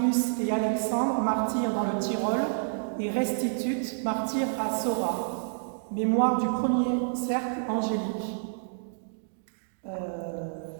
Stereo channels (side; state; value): left; silent; digital silence